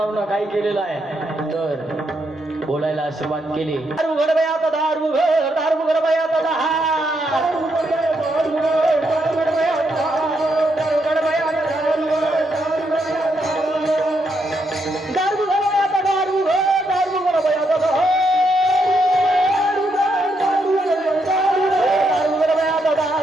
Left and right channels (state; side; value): normal; both; correlation 0.78